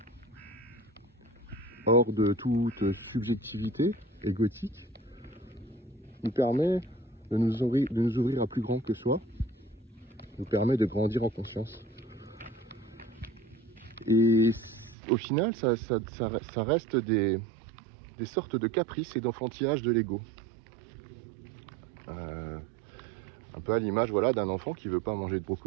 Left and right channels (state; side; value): drops out; left; at 15.0 s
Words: hors de toute subjectivité égotique, nous permet de nous ouvrir à plus grand que soi, nous permet de grandir en conscience. Et au final, ça reste des sortes de caprices et d'enfantillage de l'ego. Un peu à l'image d'un enfant qui ne veut pas manger de